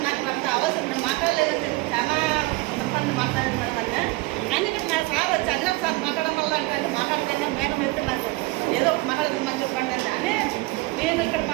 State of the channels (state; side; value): quieter; left; 22.1 dB